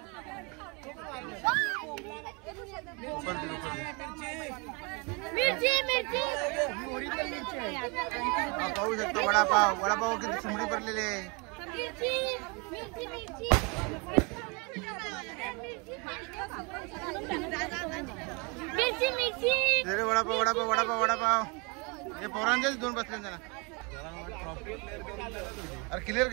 पाहू शकतो. वडापाव किती सुमडी भरलेले आहे. वडापाव हे पोरांचेच 2 बसले जरा. अरे क्लिअर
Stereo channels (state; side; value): quieter; left; 30.9 dB